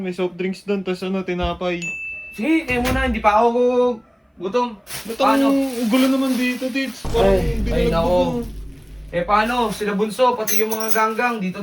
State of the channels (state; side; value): identical; both; correlation 1.00